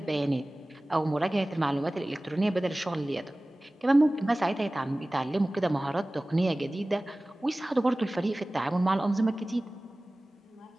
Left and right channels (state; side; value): normal; both; correlation 0.98